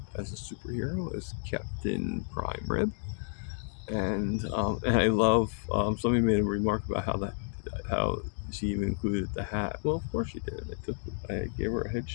superhero, as Captain Prime Rib. And I love, somebody made a remark about how she even included the hat. Well, of course she did. I gave her a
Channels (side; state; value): right; silent; digital silence